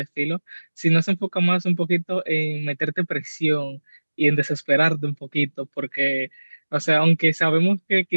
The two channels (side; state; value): both; inverted; correlation -1.00